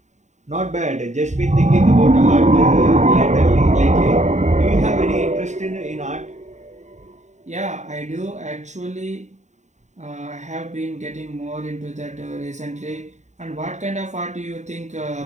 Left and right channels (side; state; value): left; late; 0.34 ms